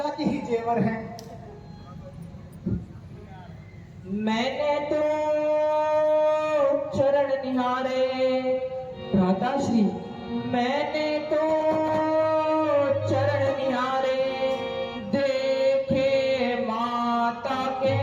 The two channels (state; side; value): identical; both; correlation 1.00